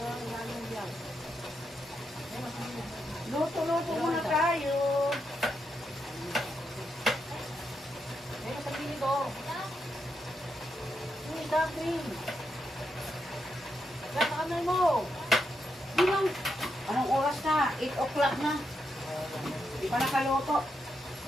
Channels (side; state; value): both; normal; correlation 0.82